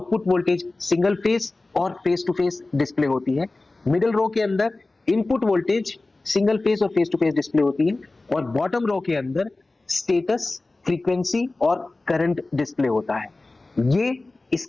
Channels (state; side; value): quieter; right; 3.1 dB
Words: वोल्टेज सिंगल फेस और फेस टू फेस डिस्प्ले होती है। मिडिल रो के अंदर इनपुट वोल्टेज सिंगल फेस और फेस टू फेस डिस्प्ले होती है और बॉटम रो के अंदर स्टेटस, फ्रीक्वेंसी और करंट डिस्प्ले होता है। ये